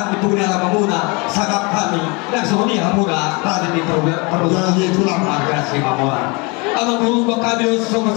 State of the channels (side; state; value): right; quieter; 29.0 dB